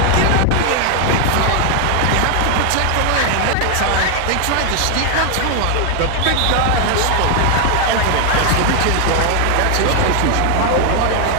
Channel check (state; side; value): different; both; correlation 0.00